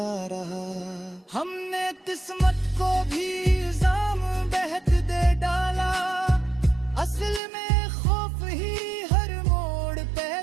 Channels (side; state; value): left; drops out; at 7.4 s